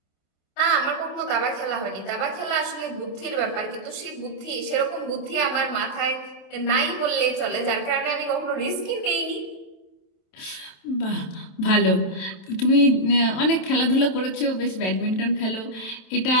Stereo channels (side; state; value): right; late; 27 ms